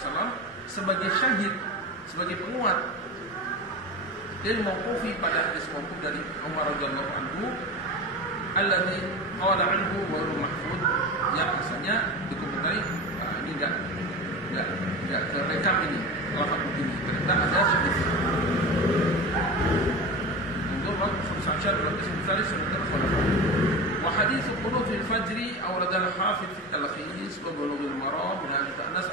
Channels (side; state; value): both; normal; correlation 0.26